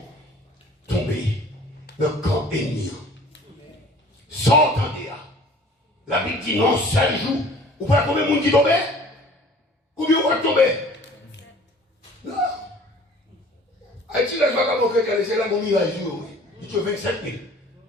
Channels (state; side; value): normal; both; correlation 0.49